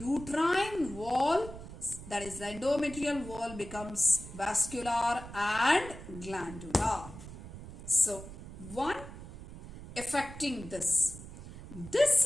wall, that is the endometrial wall, becomes vascular and glandular. So, one affecting this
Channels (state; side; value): noise; right; rumble, 13 dB below the sound